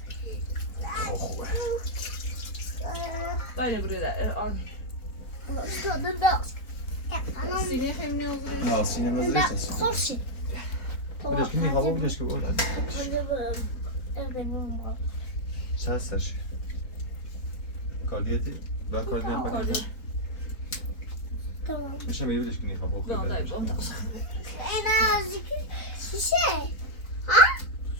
خوبه Dai buraya da on. Sine hem ne olur? نه سینما زرشت خوشی بدش که میخوابه بدش که بود چه هستش؟ کاردیتی؟ با کاردی نفاکیده؟ میشه میگه بدش که میخوابه این از شیشه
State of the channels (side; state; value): right; late; 4.2 ms